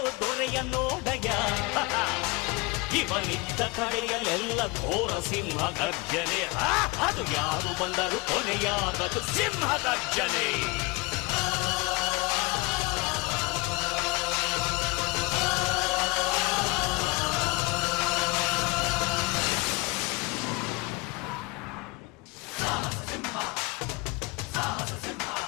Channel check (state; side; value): quieter; right; 25.3 dB